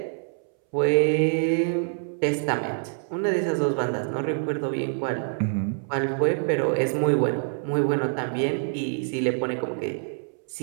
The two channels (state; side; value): silent; left; 61 dB below the other